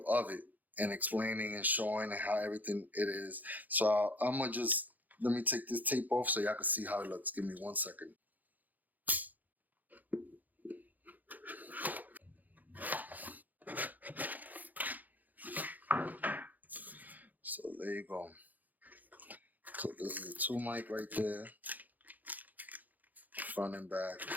of it and explaining and showing how everything it is. So I'm gonna just let me take this tape off so y'all can see how it looks. Give me 1 second. So there you go. So this is the 2 mic right there, front and back.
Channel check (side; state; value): left; late; 0.082 ms